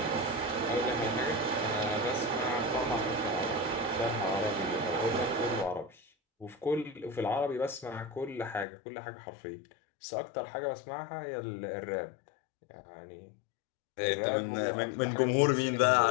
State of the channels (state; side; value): drops out; right; at 8.7 s